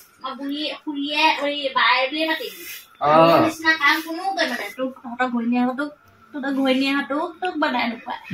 মই বুঢ়ী খুৰীয়ে বাই বুলিয়ে মাতিবি নিচিনা কাম কোনো কৰিব মানে তোক তহঁতৰ ঘৈণীয়েহঁতোক তোক বনাই নোপোৱা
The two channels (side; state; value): both; identical; correlation 1.00